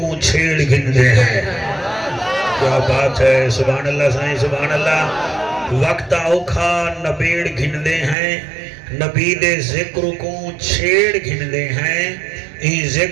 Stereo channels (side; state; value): left; drops out; at 8.2 s